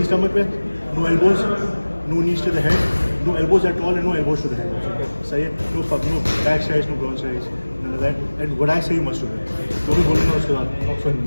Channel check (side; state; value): both; inverted; correlation -1.00